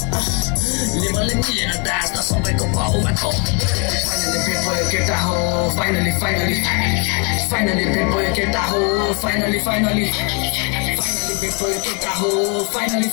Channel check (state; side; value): quieter; right; 33.1 dB